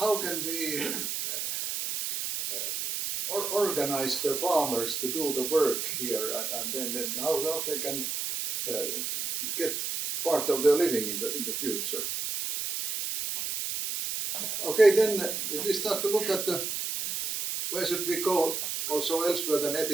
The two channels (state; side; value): noise; right; hiss, 2 dB below the sound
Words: organize the farmers to do the work here, and then how they can get part of their living in the future. Okay, then if we start to look at where should we go also elsewhere than